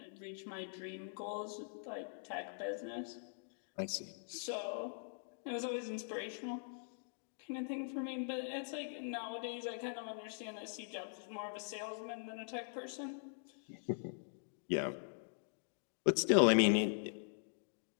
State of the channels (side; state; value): right; silent; digital silence